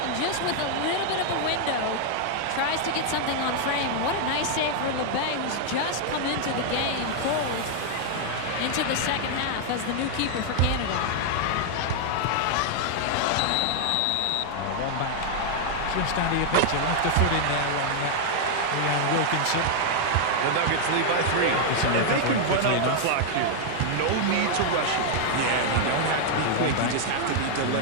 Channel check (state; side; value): different; both; correlation 0.00